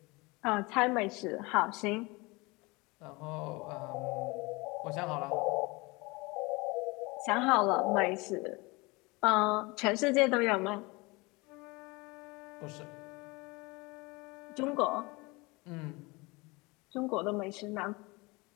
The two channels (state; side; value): quieter; right; 25.1 dB